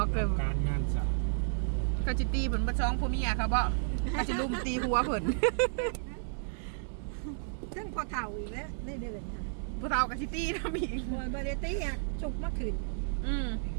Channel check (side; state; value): left; silent; digital silence